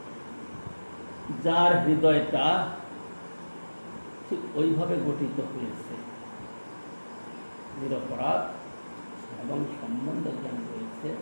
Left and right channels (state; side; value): inverted; both; correlation -1.00